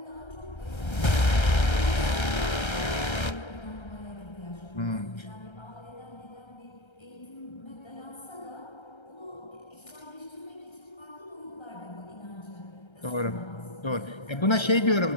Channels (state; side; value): late; right; 1.3 ms